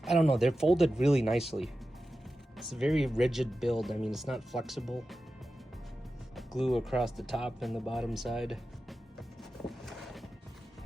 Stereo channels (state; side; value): normal; both; correlation 0.93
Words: I don't know, they're folded really nicely. It's a very rigid build. I mean, it's not flexible. Glue across the top and the bottom side.